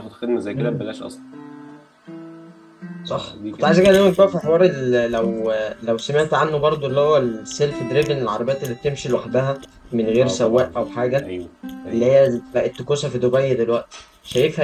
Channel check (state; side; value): identical; both; correlation 1.00